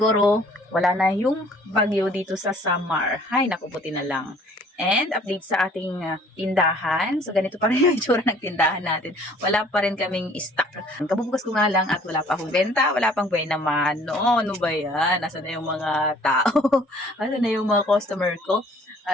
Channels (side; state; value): both; normal; correlation 0.55